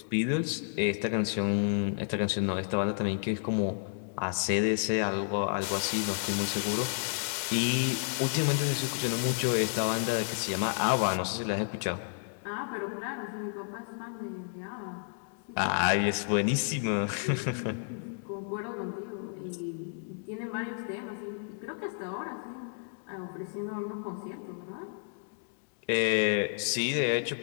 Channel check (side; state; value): right; silent; digital silence